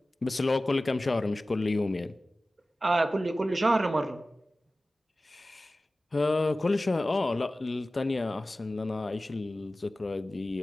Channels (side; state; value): both; normal; correlation 0.96